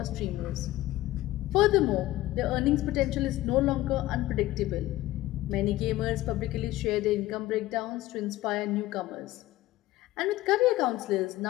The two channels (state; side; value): quieter; right; 16.4 dB